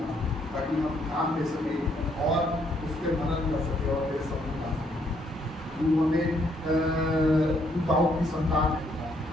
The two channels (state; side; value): normal; both; correlation 0.71